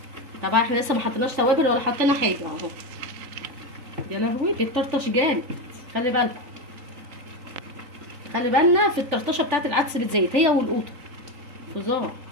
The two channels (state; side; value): late; left; 3.9 ms